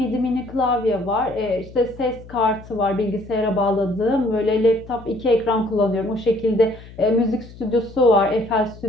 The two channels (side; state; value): left; noise; hum, 18 dB below the sound